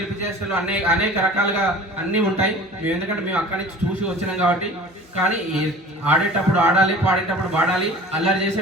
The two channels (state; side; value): normal; both; correlation 0.42